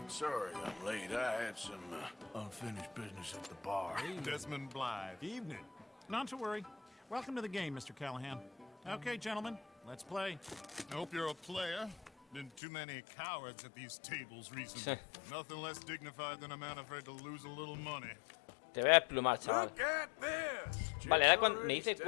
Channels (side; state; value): right; drops out; at 12.6 s